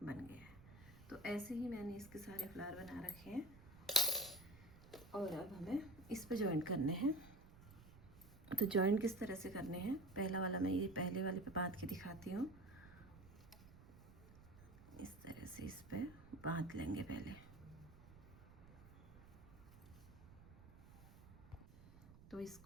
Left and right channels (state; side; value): noise; right; rumble, 19 dB below the sound